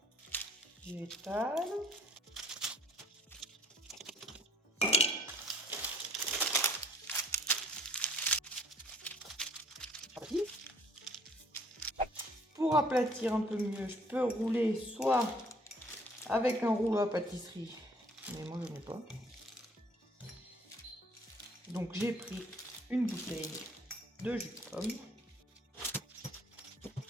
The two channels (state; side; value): normal; both; correlation 0.57